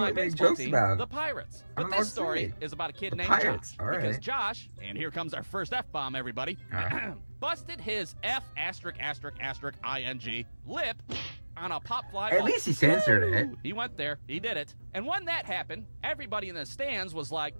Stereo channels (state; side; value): inverted; both; correlation -1.00